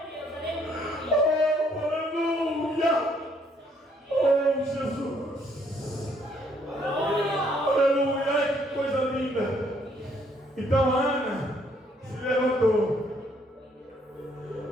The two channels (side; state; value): both; normal; correlation 0.67